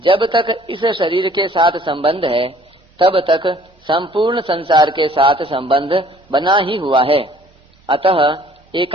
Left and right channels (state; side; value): normal; both; correlation 0.55